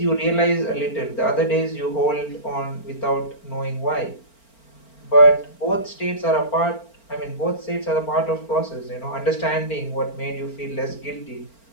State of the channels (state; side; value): late; right; 4.4 ms